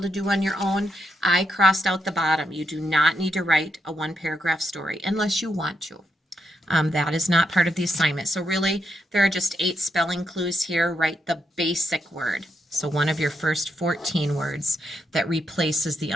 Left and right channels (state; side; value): normal; both; correlation 0.81